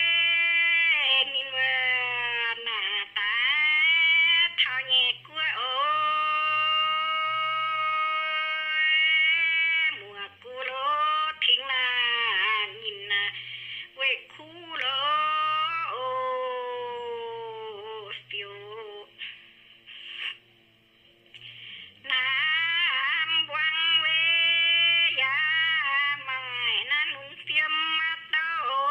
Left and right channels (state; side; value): identical; both; correlation 1.00